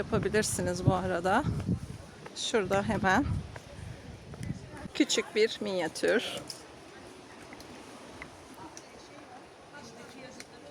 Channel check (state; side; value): identical; both; correlation 1.00